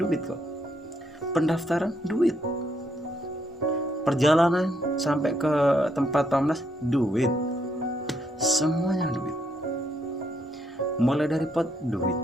kok. Pendaftaran duit, perjalanan sampai ke tempat pamnas duit, semuanya duit. Mulai dari pot duit,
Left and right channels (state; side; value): normal; both; correlation 0.75